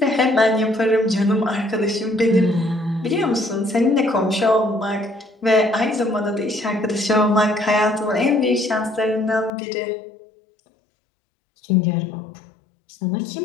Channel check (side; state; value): right; drops out; at 9.5 s